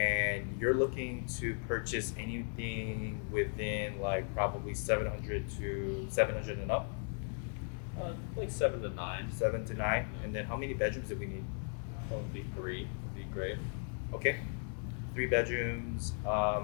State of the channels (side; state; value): right; silent; 53 dB below the other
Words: you're looking to purchase anything within like probably 700 to 700 and up, Like 7 to 9. 7 to 9. And then how many bedrooms do we need? Probably 3 would be great. Okay, 3 bedrooms.